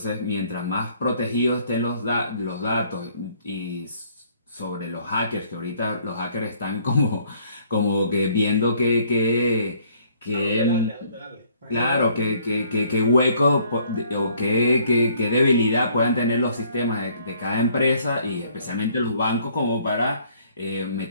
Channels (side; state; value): both; inverted; correlation -0.62